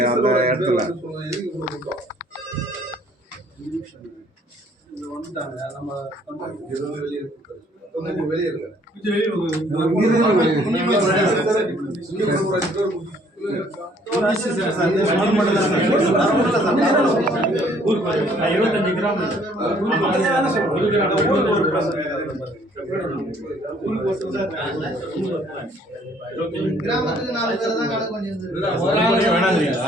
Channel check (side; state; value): both; normal; correlation 0.61